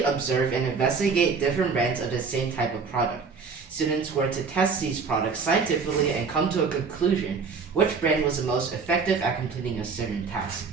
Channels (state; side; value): quieter; left; 5.2 dB